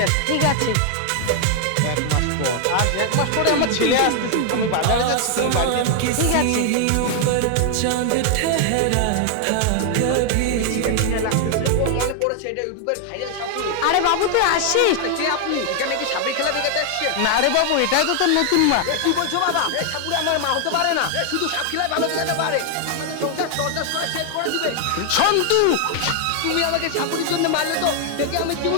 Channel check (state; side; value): different; both; correlation 0.00